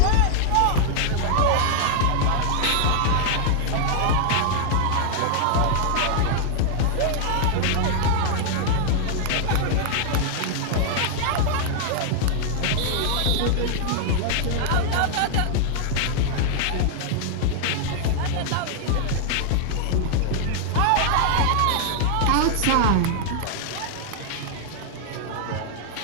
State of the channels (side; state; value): both; different; correlation 0.00